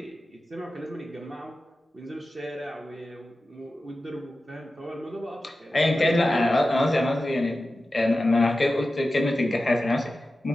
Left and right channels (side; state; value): both; normal; correlation 0.94